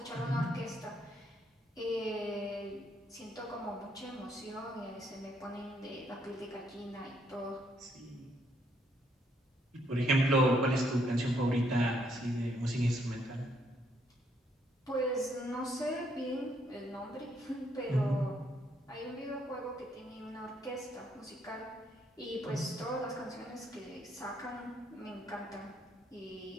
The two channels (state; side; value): normal; both; correlation 0.72